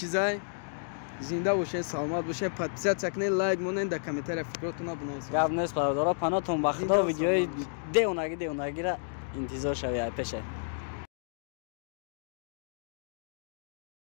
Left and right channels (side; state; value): right; silent; digital silence